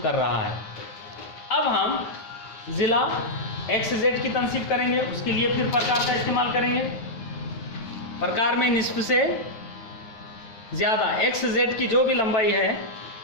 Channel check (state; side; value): late; right; 9.5 ms